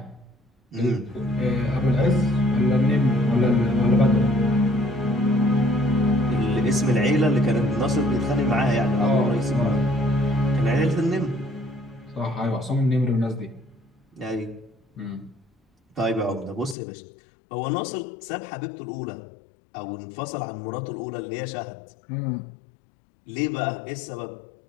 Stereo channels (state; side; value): drops out; right; at 16.8 s